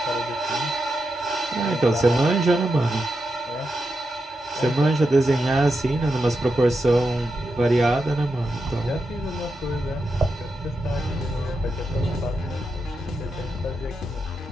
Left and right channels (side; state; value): both; normal; correlation 0.87